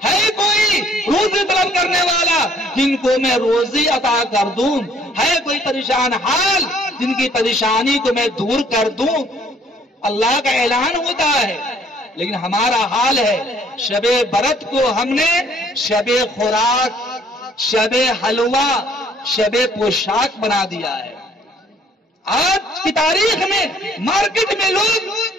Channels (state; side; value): normal; both; correlation 0.61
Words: ہے کوئی روزی طلب کرنے والا جن کو میں روزی عطا کر دوں، ہے کوئی پریشان حال جن کی پریشانی کو میں دور کر دوں۔ اللہ کا اعلان ہوتا ہے، لیکن ہمارا حال ہے شب برت کو ہم نے شب خوراک، شب حلوہ، شب پوشاک بنا دیا ہے۔ آج کی تاریخ میں مارکیٹ میں لوگ